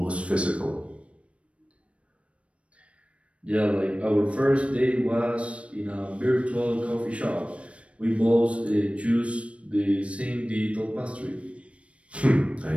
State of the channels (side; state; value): left; late; 0.062 ms